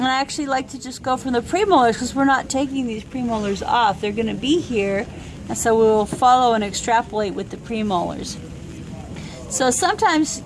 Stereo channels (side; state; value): both; identical; correlation 1.00